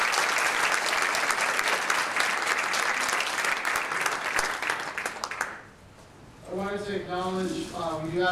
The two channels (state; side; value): identical; both; correlation 1.00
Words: I wanted to acknowledge, we do